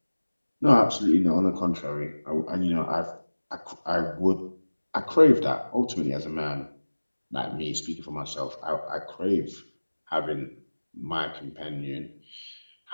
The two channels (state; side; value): inverted; both; correlation -1.00